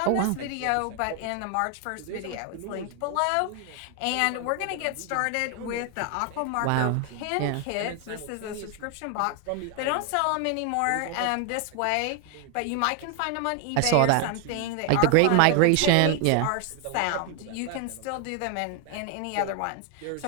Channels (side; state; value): both; different; correlation 0.00